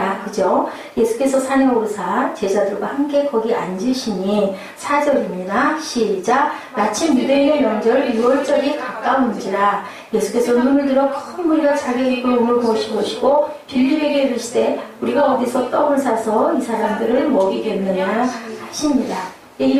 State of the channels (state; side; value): identical; both; correlation 1.00